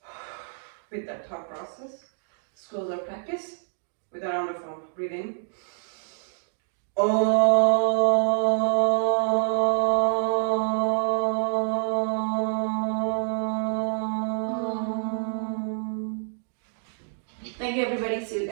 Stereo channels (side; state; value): left; silent; digital silence